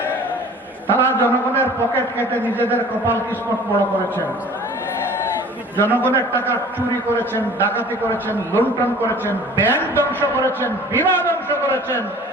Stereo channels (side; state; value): both; normal; correlation 0.46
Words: তারা জনগণের পকেট কেটে নিজেদের কপাল কিসমত বড় করেছেন, জনগণের টাকা চুরি করেছেন, ডাকাতি করেছেন, লুণ্ঠন করেছেন, ব্যাংক ধ্বংস করেছেন, বীমা ধ্বংস করেছেন,